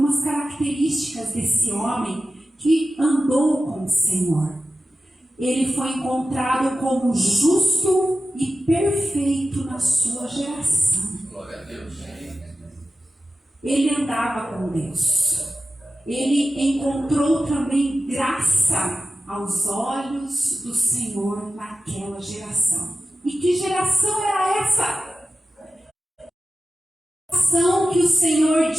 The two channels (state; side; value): normal; both; correlation 0.94